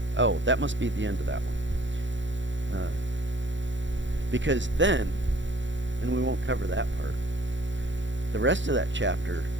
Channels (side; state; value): left; late; 0.54 ms